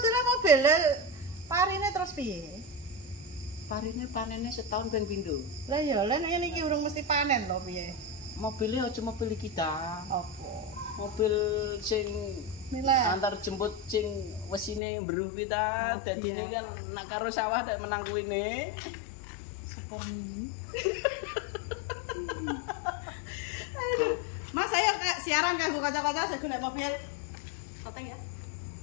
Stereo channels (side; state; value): right; drops out; at 14.8 s